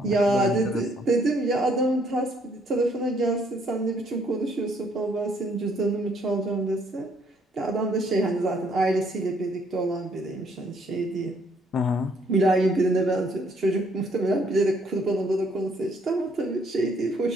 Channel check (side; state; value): both; normal; correlation 0.67